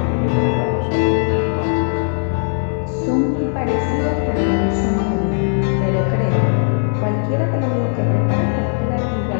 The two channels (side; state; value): right; silent; 67 dB below the other